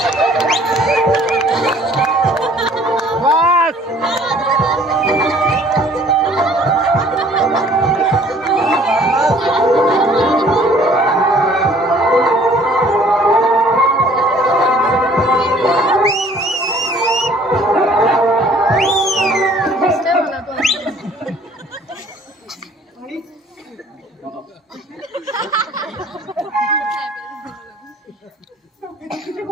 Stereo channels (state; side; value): normal; both; correlation 0.55